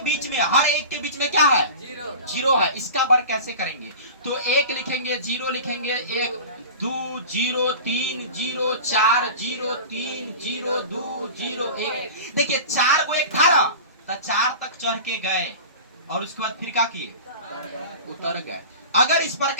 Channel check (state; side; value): inverted; both; correlation -0.34